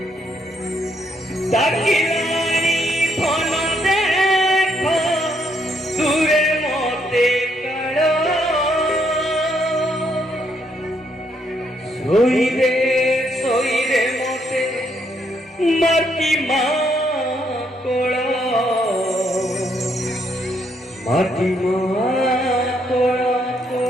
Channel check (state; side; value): normal; both; correlation 0.73